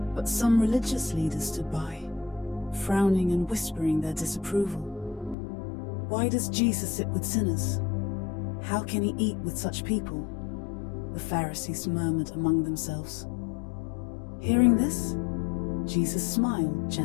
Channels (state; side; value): drops out; right; at 5.4 s